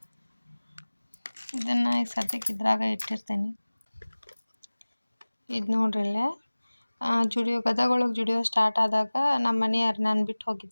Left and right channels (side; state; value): both; inverted; correlation -1.00